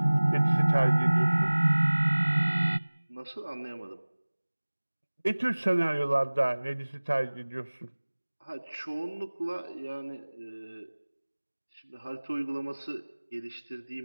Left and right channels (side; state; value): both; inverted; correlation -1.00